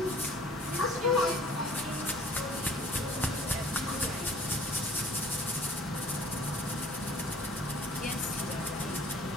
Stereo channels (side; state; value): both; normal; correlation 0.52